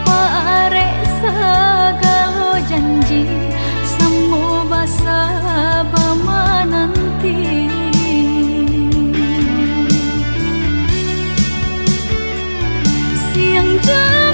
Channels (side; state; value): both; inverted; correlation -1.00